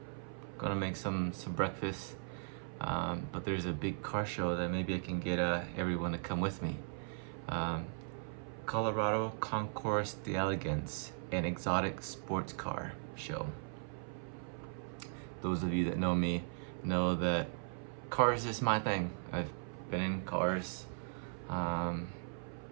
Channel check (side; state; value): left; silent; 52 dB below the other